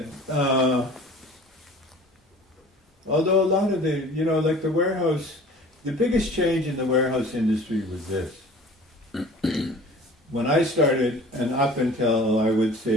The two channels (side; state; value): both; normal; correlation 0.45